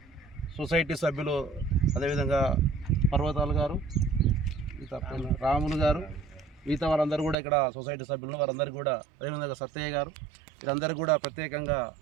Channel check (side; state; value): left; drops out; at 7.4 s